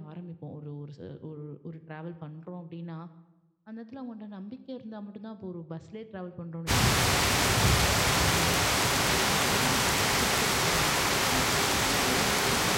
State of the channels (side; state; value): both; identical; correlation 1.00